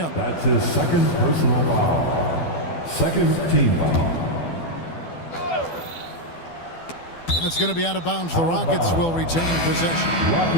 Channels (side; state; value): right; late; 12 ms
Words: That's his second personal foul. Second team foul. And it's going to be out of bounds. The Rockets will retain possession.